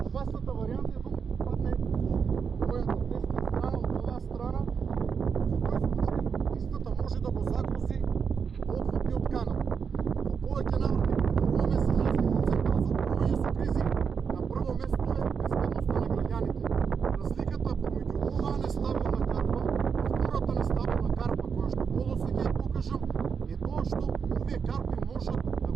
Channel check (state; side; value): quieter; left; 6.3 dB